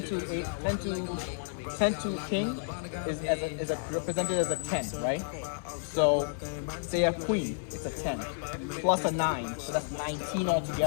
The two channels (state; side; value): silent; right; digital silence